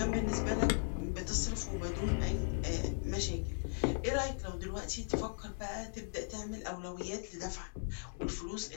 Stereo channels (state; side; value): silent; right; digital silence